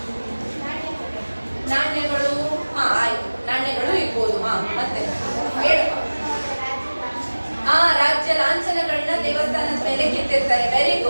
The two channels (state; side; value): inverted; both; correlation -1.00